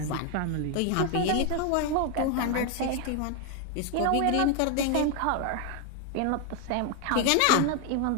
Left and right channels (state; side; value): different; both; correlation 0.01